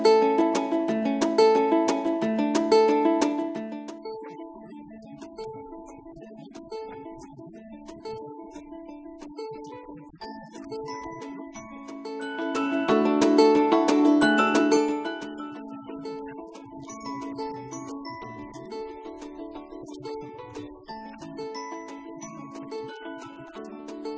Сәлеметсіздер ме, құрметті көрермен, құрметті ұжым, оқушылар. Толық аты жөнім Чултуков Нартай Сәбитханұлы. Семей қаласының Шәкәрім атындағы Семей мемлекеттік университетін бітірдім, математика мамандығы бойынша. Кейін сол университеттің магистратурасын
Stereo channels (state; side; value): identical; both; correlation 1.00